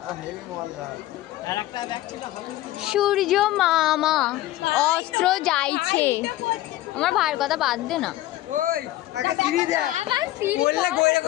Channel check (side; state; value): right; quieter; 15.8 dB